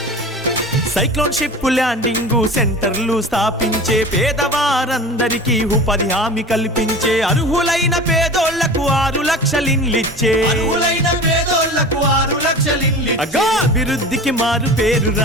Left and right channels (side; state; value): both; normal; correlation 0.36